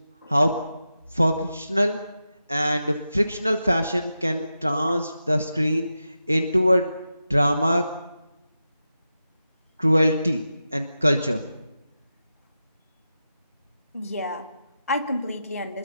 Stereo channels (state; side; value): inverted; both; correlation -0.90